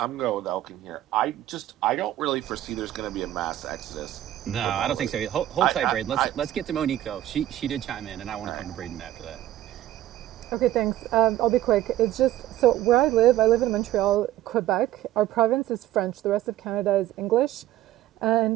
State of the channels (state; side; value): quieter; left; 13.6 dB